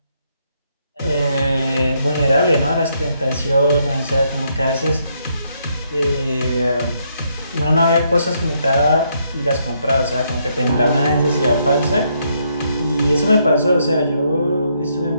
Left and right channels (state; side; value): inverted; both; correlation -0.75